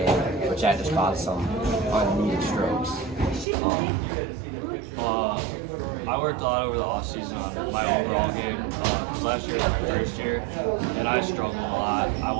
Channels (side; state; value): left; drops out; at 3.5 s